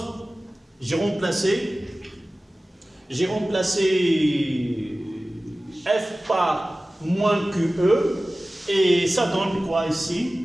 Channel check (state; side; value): normal; both; correlation 0.96